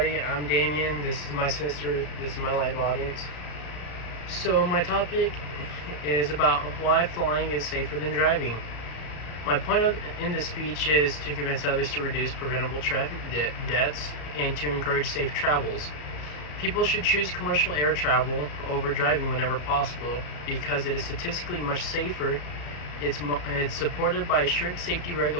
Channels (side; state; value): right; late; 34 ms